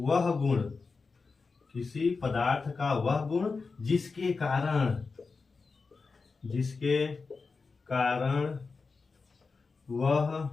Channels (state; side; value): quieter; right; 4.4 dB